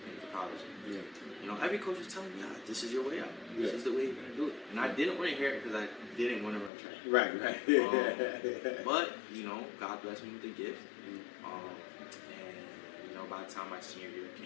paying for college. Yeah. You know, every coach was telling me, this is your way out. Yeah. This is the way you're gonna do it. And I didn't want to hear it because I didn't want to run track. Right. But you know, God blessed me with a gift. And you know, by the time my senior year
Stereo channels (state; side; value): drops out; right; at 6.7 s